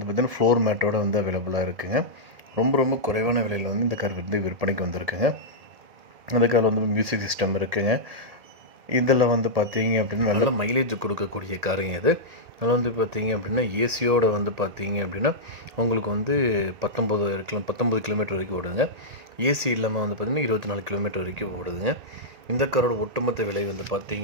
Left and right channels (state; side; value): late; left; 1.8 ms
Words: பார்த்திங்கன்னா ஃப்ளோர் மேட்டோட வந்து அவைலபிளாக இருக்குங்க. ரொம்ப குறைவான விலையில் வந்து இந்த கார் வந்து விற்பனைக்கு வந்திருக்குங்க. அந்த கார் வந்து மியூசிக் சிஸ்டம் இருக்குங்க. இதில் வந்து பார்த்தீங்க அப்படின்னா நல்ல மைலேஜ் கொடுக்கக்கூடிய காருங்க இது. அதில் வந்து பார்த்தீங்க அப்படின்னா ஏசியோட வந்து பார்த்தீங்க அப்படின்னா உங்களுக்கு வந்து 19 கிலோமீட்டர் வரைக்கும் ஓடுங்க. ஏசி இல்லாமல் வந்து பார்த்திங்கன்னா 24 கிலோமீட்டர் வரைக்கும் ஓடுதுங்க. இந்த காரோட ஒட்டுமொத்த விலை வந்து